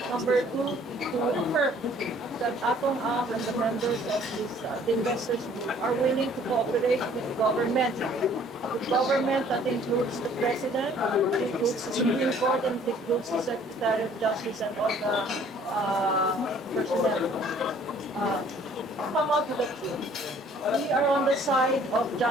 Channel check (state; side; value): normal; both; correlation 0.57